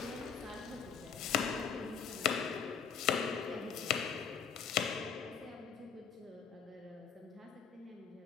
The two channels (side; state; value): right; quieter; 7.0 dB